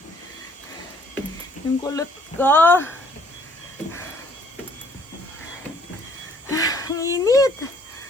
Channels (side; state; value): both; normal; correlation 0.62